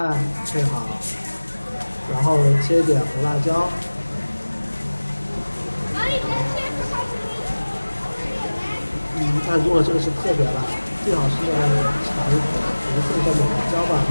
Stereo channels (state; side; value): inverted; both; correlation -1.00